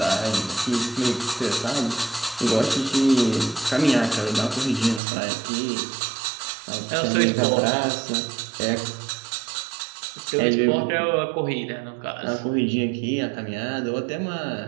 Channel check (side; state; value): left; drops out; at 5.0 s